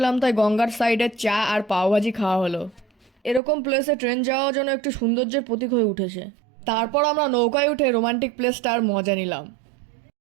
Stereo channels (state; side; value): drops out; left; at 3.4 s